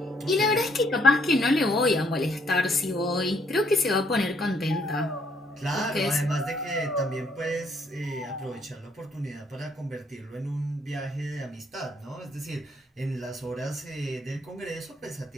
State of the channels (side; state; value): both; normal; correlation 0.69